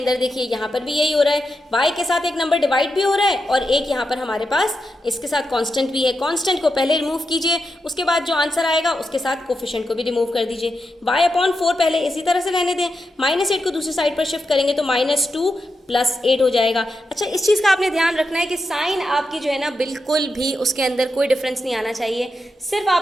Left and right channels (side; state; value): both; normal; correlation 0.87